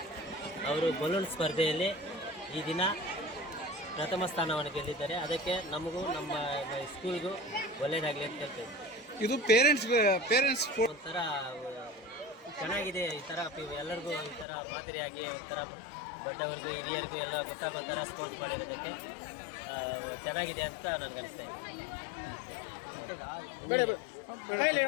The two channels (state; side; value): drops out; right; at 14.5 s